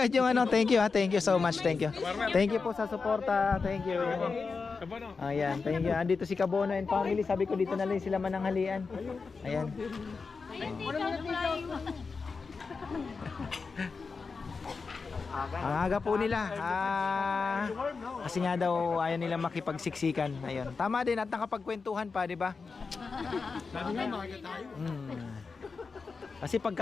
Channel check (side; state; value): right; quieter; 4.7 dB